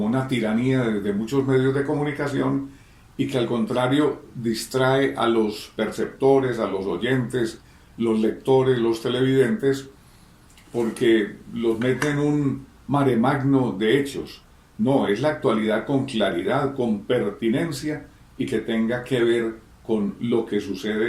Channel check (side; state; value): both; identical; correlation 1.00